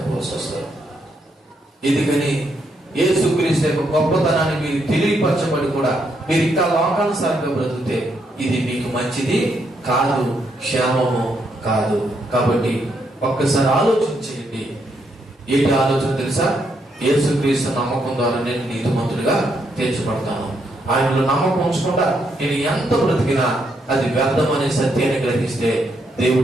వస్తుంది. ఎందుకని యేసుక్రీస్తు యొక్క గొప్పతనాన్ని మీరు తెలియపరచబడి కూడా మీరు ఇంకా లోకానుసారంగా బ్రతికితే ఇది మీకు మంచిది కాదు, క్షేమము కాదు. కాబట్టి ఒక్కసారి ఆలోచించేయండి. ఏంటి ఆలోచన తెలుసా? యేసుక్రీస్తు నమ్మకం ద్వారా నేను నీతిమంతుడిగా తీర్చబడతాను. ఆయనలో నమ్మకం ఉంచకుండా నేను ఎంత బ్రతికినా అది వ్యర్థమనే సత్యాన్ని గ్రహిస్తే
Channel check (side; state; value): both; normal; correlation 0.77